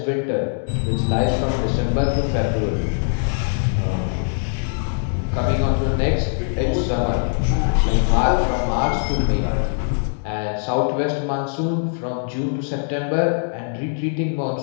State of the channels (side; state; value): right; silent; digital silence